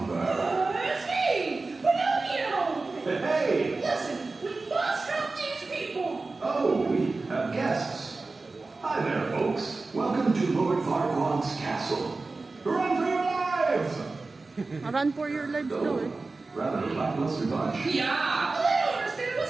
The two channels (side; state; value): left; quieter; 3.6 dB